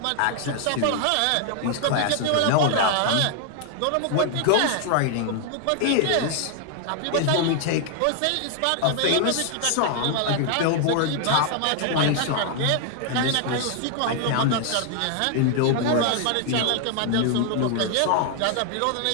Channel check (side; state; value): both; different; correlation 0.00